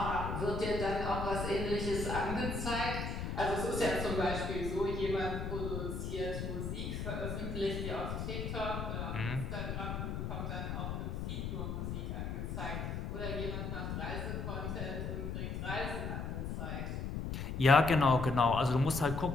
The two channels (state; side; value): noise; left; rumble, 3 dB below the sound